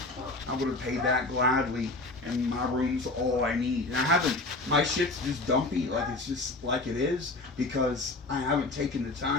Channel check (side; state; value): right; quieter; 3.1 dB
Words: I would have paid that gladly, and my room's all I need. And I haven't. My shit's just dumpy, like it's just like it is, because I haven't taken the